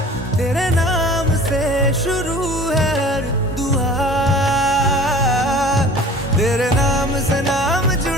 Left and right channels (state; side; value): normal; both; correlation 0.45